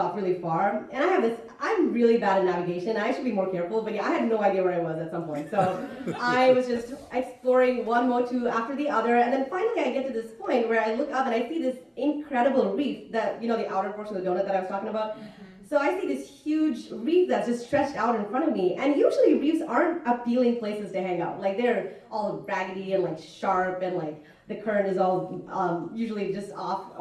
really far. And I'm really bad at navigation. I should be more careful, but yeah, I had no idea where I was at some point. So I was just exploring one motu after the other, and then finally I get to this point where I look up and I see this incredible reef that, the outer portion of the donut that I was talking about. So I see this huge reef that's just stretched out in front of me, and usually reefs aren't appealing places to hang out. Like they're all raggedy and like sharp, and like the current is all usually just off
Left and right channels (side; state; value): both; identical; correlation 1.00